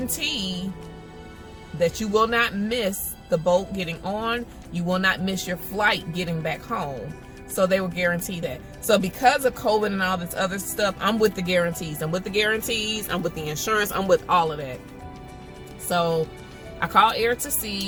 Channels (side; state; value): both; identical; correlation 1.00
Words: that you will not miss the boat getting on. You will not miss your flight getting back home. So they will guarantee that. So because of COVID and all this other stuff, I'm with the guarantees. I'm with the guarantees. I'm with the insurance. I'm with all of that. So I called Air to